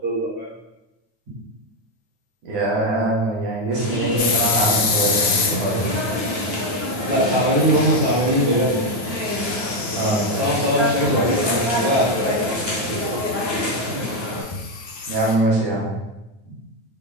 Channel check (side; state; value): left; late; 9.4 ms